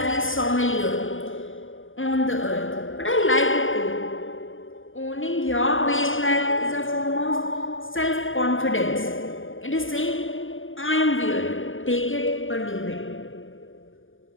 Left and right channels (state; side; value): late; right; 0.58 ms